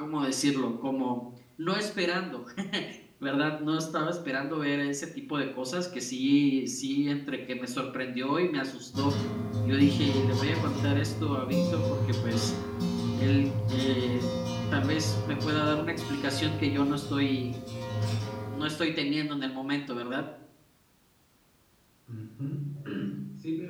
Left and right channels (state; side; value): identical; both; correlation 1.00